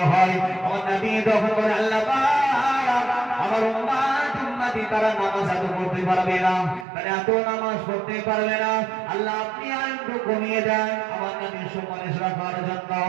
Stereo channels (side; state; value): left; drops out; at 6.9 s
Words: হয়। আমার নবী তখন বলে আল্লাহ পাক আমার উম্মতি তারা নামাজ এত পড়তে পারবে না, তারা এত নামাজ পড়তে পারবে না, আল্লাহ আপনি আর একটু কমিয়ে দেন আমার নবীর সুপারিশ রাখার জন্য।